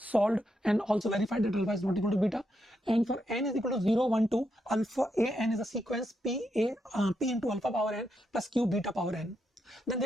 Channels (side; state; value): both; normal; correlation 0.82